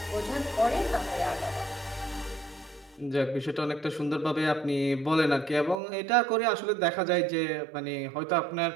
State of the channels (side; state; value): left; drops out; at 5.8 s